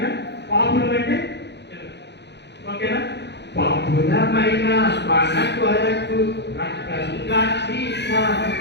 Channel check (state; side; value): late; right; 0.50 ms